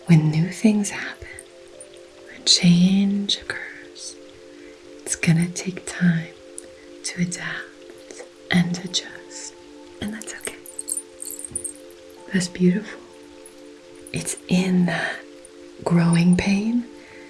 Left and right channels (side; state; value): both; identical; correlation 1.00